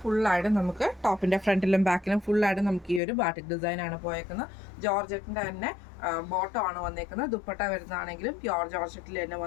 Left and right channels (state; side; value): drops out; right; at 3.0 s